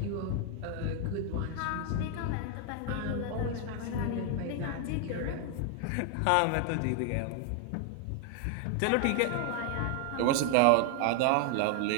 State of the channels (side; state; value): both; different; correlation 0.00